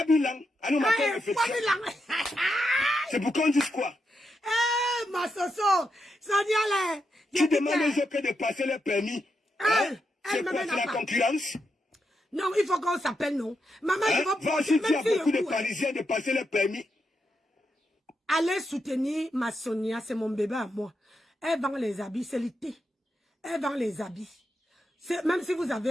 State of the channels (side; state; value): both; normal; correlation 0.84